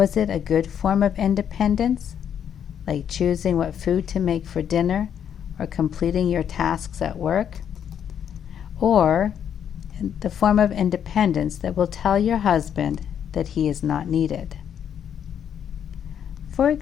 it a good form of independence, like choosing what food to make for dinner or completing your tasks at work? Or the form of independence that will tell your husband that he is not needed? For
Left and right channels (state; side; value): quieter; right; 8.8 dB